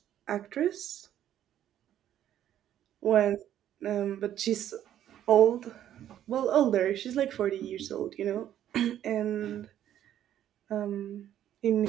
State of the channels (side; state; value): left; quieter; 11.2 dB